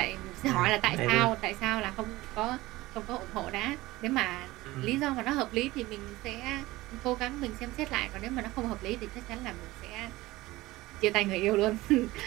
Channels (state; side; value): quieter; left; 18.8 dB